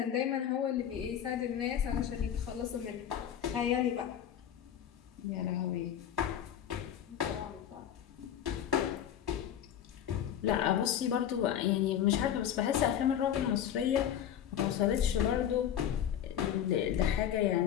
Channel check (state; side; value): quieter; right; 9.9 dB